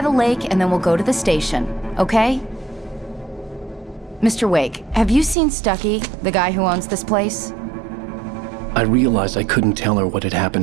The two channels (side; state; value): left; drops out; at 5.4 s